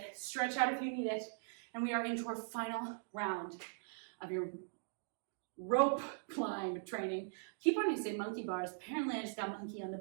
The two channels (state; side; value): silent; left; digital silence